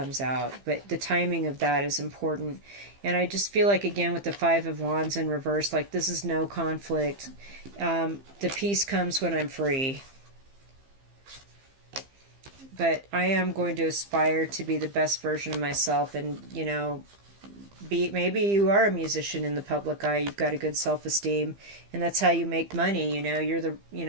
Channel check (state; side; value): late; left; 15 ms